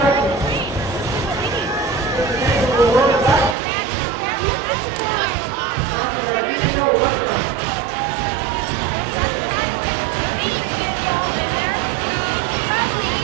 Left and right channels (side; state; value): left; drops out; at 3.6 s